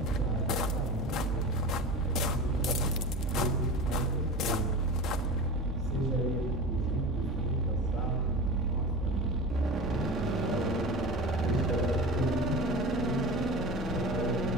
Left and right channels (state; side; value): normal; both; correlation 0.30